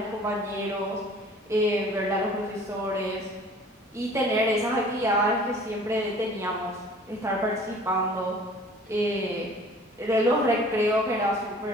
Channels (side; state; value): both; normal; correlation 0.49